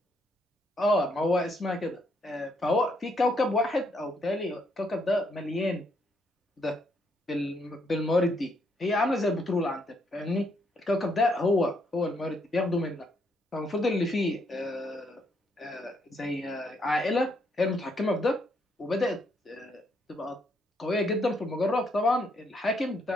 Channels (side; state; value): both; normal; correlation 0.74